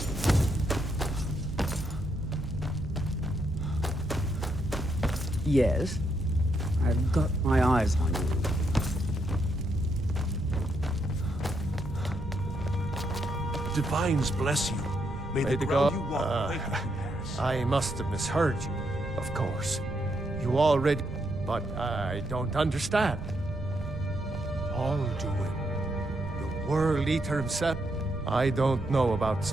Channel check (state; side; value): noise; right; rumble, 10 dB below the sound